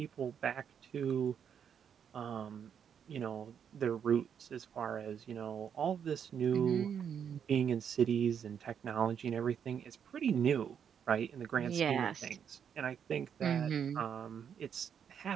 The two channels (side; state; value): left; quieter; 7.9 dB